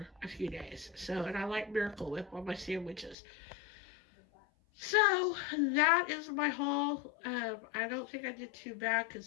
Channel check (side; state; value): right; drops out; at 3.2 s